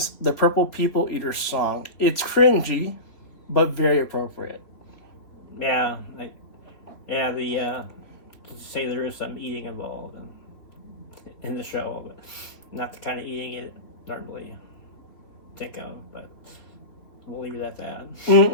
the Purple People Eater song. It's cringy, but very appropriate. yeah, to say there is some eating involved in the show, but not the kind of eating you normally think of. But we'll leave it at that.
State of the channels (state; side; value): late; right; 3.6 ms